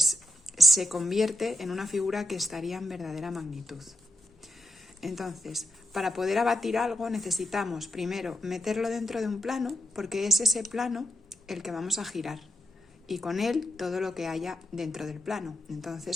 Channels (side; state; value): both; normal; correlation 0.83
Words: se convierte en una figura que estaría en verdadera magnitud. Entonces, para poder abatir algo necesitamos primero meterlo dentro de un plano, porque es ese plano el que vamos a girar, y con él todo lo que haya dentro del plano.